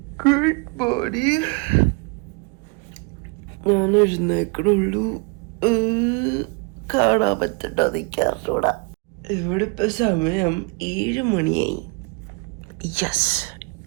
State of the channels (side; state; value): left; quieter; 31.5 dB